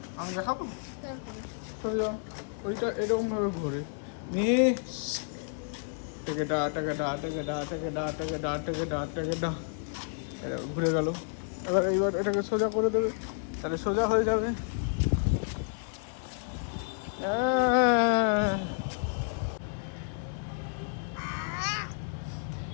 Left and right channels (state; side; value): silent; right; 57 dB below the other